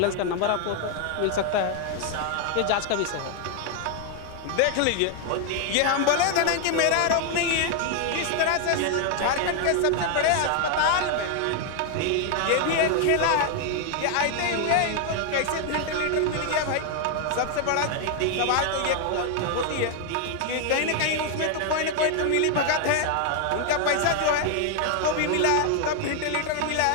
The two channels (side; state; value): both; different; correlation 0.00